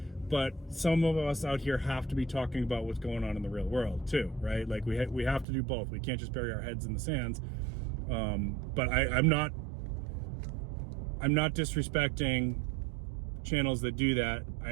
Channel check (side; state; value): left; drops out; at 5.5 s